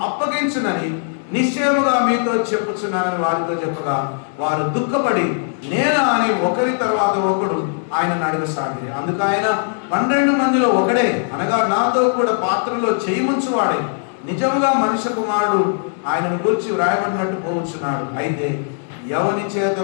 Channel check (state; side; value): silent; right; digital silence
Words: అప్పగించునని నిశ్చయముగా మీతో చెప్పుచున్నానని వారితో చెప్పగా వారు దుఃఖపడి నేనా అని ఒకరి తర్వాత ఒకడు ఆయనను అడగసాగి. అందుకు ఆయన 12 మందిలో ఒకడే అనగా నాతో కూడా పాత్రలో చేయి ముంచువాడే నిజముగా మనుష్య కుమారుడు ఆయనను గురించి వ్రాయబడినట్టు పోవచ్చున్నాడు. అయితే ఎవని చేత